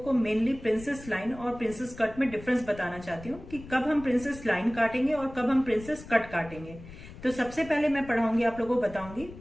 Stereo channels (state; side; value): noise; left; rumble, 16 dB below the sound